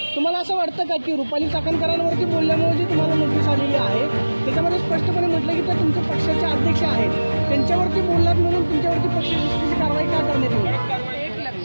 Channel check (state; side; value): inverted; both; correlation -1.00